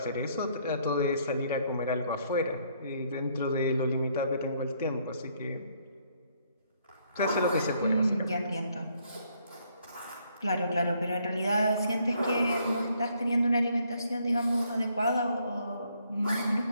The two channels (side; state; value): both; inverted; correlation -0.69